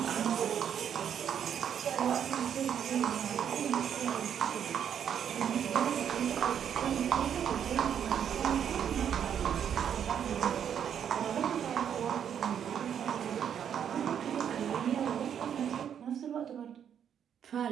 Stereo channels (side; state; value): left; quieter; 8.7 dB